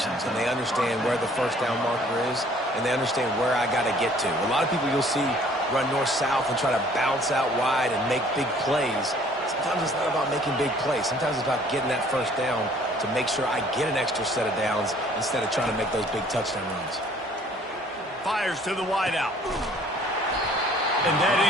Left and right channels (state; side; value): normal; both; correlation 0.57